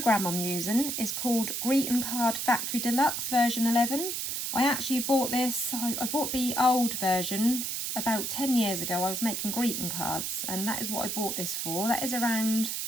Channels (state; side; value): noise; right; hiss, 2 dB below the sound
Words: I'm using is called Greeting Card Factory Deluxe version 11. I actually bought this, I bought the old version about 10 years ago. I was making greeting cards and that is what I bought this for. That is around,